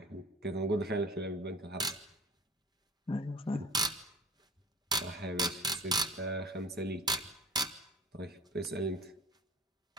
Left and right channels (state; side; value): normal; both; correlation 0.44